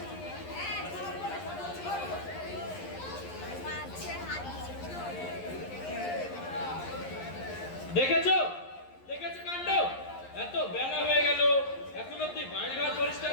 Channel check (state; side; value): late; right; 11 ms